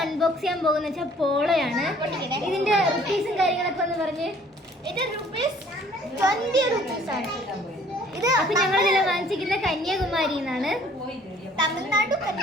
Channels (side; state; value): both; normal; correlation 0.56